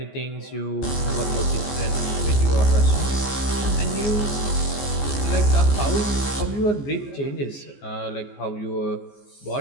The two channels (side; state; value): right; late; 14 ms